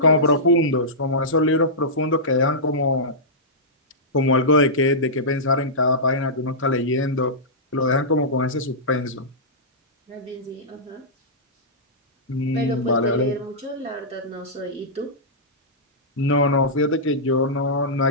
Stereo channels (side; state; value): both; normal; correlation -0.14